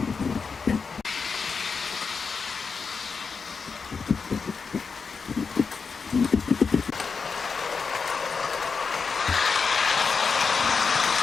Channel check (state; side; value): quieter; right; 5.2 dB